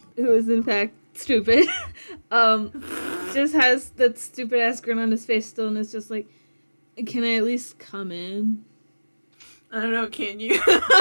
is in fact stupid, just has that stupid ass grin on his face still, and is just like, can I at least come in? I don't know, can you?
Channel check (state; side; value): inverted; both; correlation -1.00